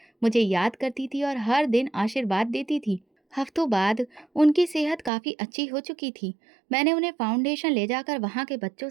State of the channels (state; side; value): drops out; left; at 5.1 s